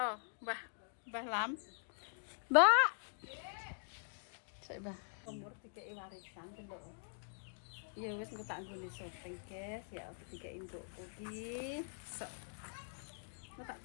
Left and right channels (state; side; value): silent; right; digital silence